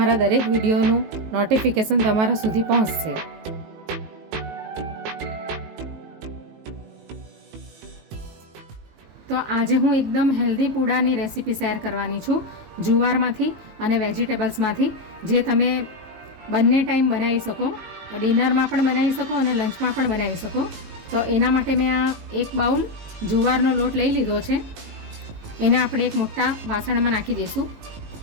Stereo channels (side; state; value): left; late; 19 ms